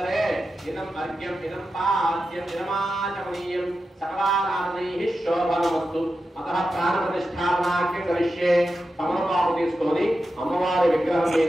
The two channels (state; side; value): normal; both; correlation 0.90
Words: ఇదం అర్ఘ్యం ఇదం పాద్యం ఇదమాచమనీయం సకలారాధనైః శోభనమస్తు. అతః ప్రాణప్రతిష్ఠాపనాఖ్యం కరిష్యే. తమలపాకు తీసుకొని అమ్మవారి విగ్రహం